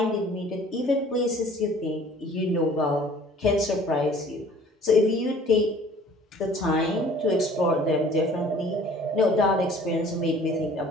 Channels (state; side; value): normal; both; correlation 0.51